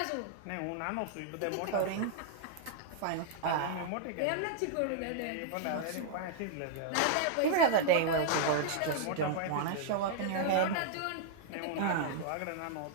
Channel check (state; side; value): different; both; correlation -0.01